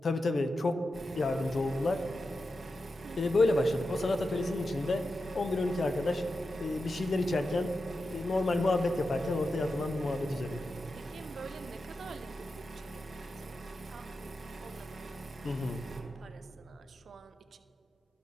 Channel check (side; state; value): both; normal; correlation 0.90